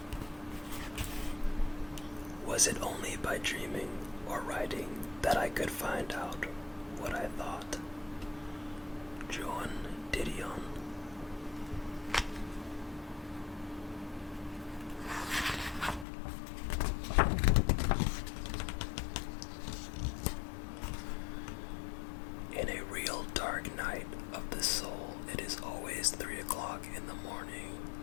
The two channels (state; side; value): drops out; right; at 16.1 s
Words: Was it only by dreaming or writing that I could find out what I thought? John Didion. In a real dark night of the soul, it is always 3 o'clock in the morning.